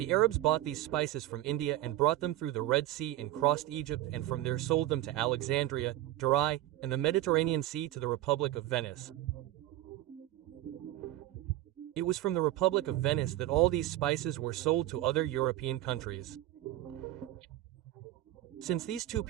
Arabs bought these spices from India and brought them through the Red Sea and crossed Egypt and from there sold them to Alexandria, Durai, and the Mediterranean Sea to the Republic of Venice. It was from the Republic of Venice that all these spices were sold to other European countries. Since these two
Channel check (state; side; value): quieter; left; 15.0 dB